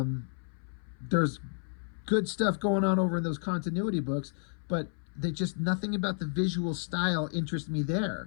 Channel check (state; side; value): silent; right; 57 dB below the other